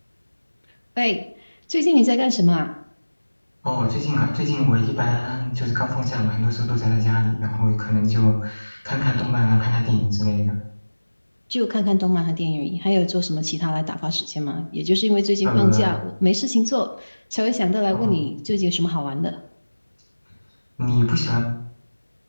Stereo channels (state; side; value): inverted; both; correlation -1.00